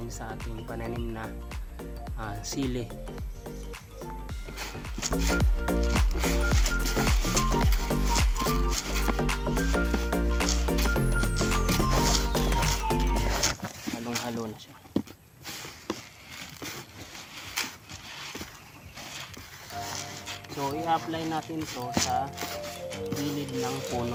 sa ating pananim na sili. Halong-halo na siya. So i-apply natin to sa gilid ng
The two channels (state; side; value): identical; both; correlation 1.00